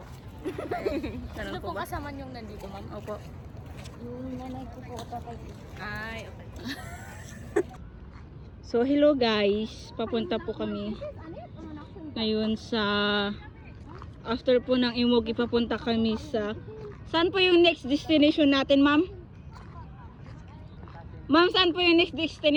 Ganun Sino po po ba? kasama niyong nandito, ma'am? Opo. Yung nanay ko po, tatay ko. Ay, okay. So, hello guys. Papunta po kami ngayon sa after po ng Imuki, papunta kami sa saan po yung next destination natin, ma'am? Ma'am, saan po yung next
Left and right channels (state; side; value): identical; both; correlation 1.00